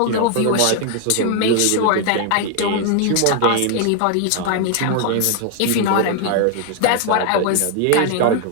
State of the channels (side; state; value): both; different; correlation 0.00